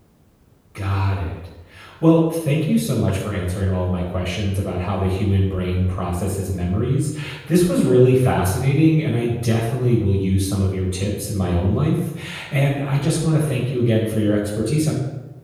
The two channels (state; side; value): identical; both; correlation 1.00